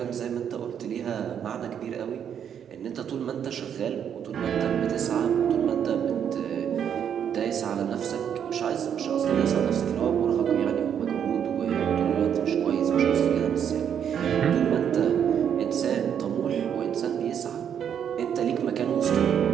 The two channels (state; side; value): quieter; left; 8.6 dB